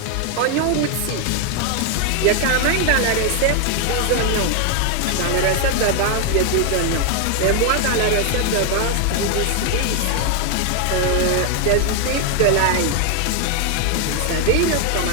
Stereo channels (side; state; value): both; different; correlation 0.00